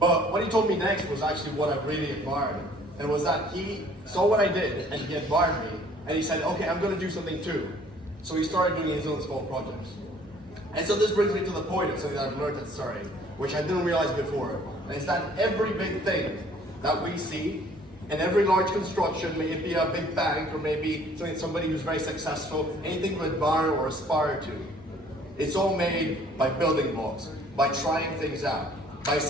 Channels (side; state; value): both; normal; correlation 0.56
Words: what he told me next was actually what I really admired, and it was that he saw what I did, and he admired me, and he said, "Okay, I'm going to do something too." So he started doing his own small projects. And so this brings me to the point of something that I've learned at Surrey, which I didn't realize before, and it's that every big thing that we see, and every large construction, may it be a big bank, or maybe somebody who's very successful, anything to admire or aspire to, it's all made by building blocks, by trying things out, by